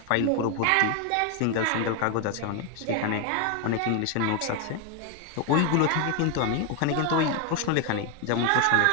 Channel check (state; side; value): different; both; correlation 0.01